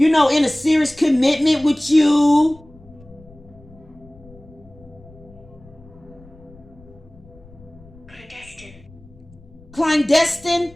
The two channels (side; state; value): left; noise; rumble, 24 dB below the sound